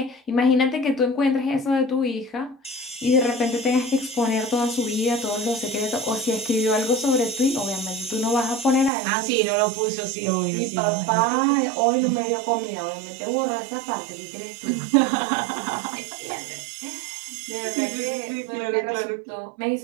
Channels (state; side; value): drops out; left; at 8.9 s